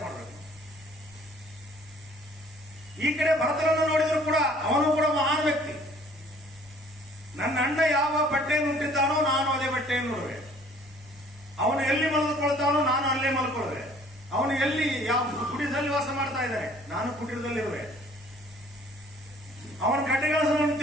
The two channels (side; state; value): both; normal; correlation 0.56